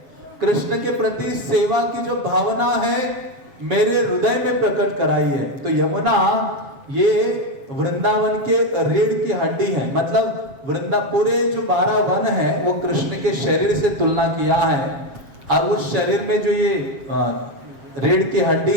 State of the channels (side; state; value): left; late; 7.5 ms